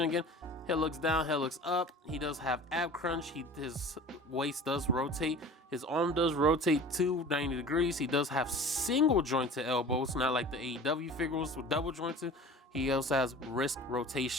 again. Head looks down, head looks up. He does have ab crunch. His waist does rotate. His arm does rotate too, 90 degrees. He does have single jointed elbows, not like the AEW figures with double jointed. He also has wrist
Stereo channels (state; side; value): normal; both; correlation 0.41